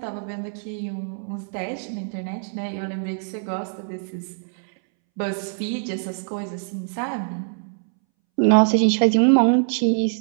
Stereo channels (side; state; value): left; silent; 63 dB below the other